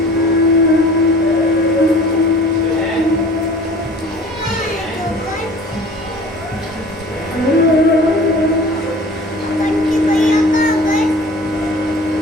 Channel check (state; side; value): normal; both; correlation 0.45